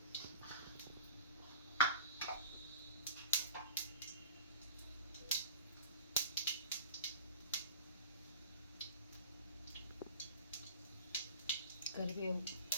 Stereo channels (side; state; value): both; inverted; correlation -0.38